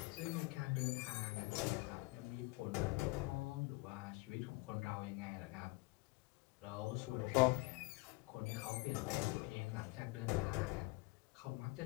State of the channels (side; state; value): right; quieter; 25.3 dB